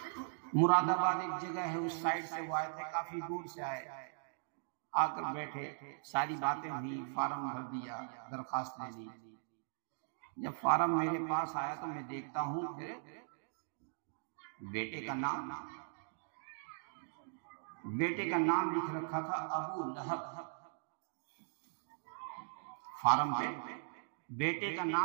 مراد آباد ایک جگہ ہے، اس سائڈ سے وہ آئے تھے، کافی دور سے آئے. آ کر بیٹھے، ساری باتیں ہوئی، فارم بھر دیا، درخواست لے لی. جب فارم میرے پاس آیا تو میں دیکھتا ہوں پھر بیٹے کا نام لکھ رکھا تھا ابو لہب. فارم پہ بیٹے کا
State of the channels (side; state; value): left; silent; digital silence